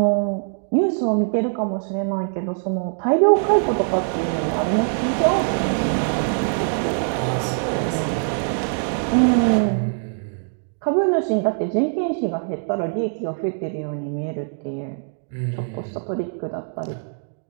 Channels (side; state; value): left; silent; digital silence